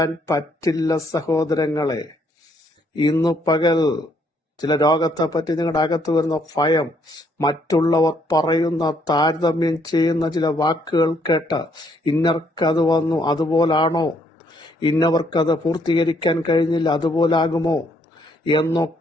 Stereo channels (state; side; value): normal; both; correlation 0.69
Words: പറ്റില്ല സഹോദരങ്ങളെ. ഇന്നു പകൽ ചില രോഗത്തെപ്പറ്റി നിങ്ങളുടെ അകത്ത് വരുന്ന ഭയം, മറ്റുള്ളവർ പറയുന്ന താരതമ്യം ചെയ്യുന്ന ചില വാക്കുകൾ കേട്ട് ഇന്നർക്കത് വന്നു അതുപോലാണോ, ഇന്നവർക്കത് പൂർത്തീകരിക്കാൻ കഴിഞ്ഞില്ല അതുപോലാകുമോ